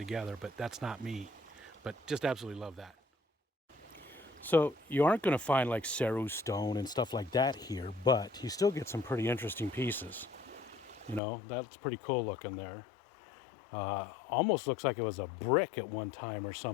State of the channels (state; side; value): drops out; right; at 11.2 s